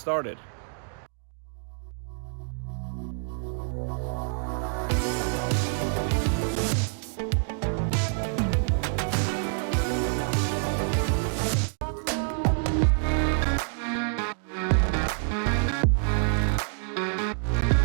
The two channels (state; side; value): silent; left; 60 dB below the other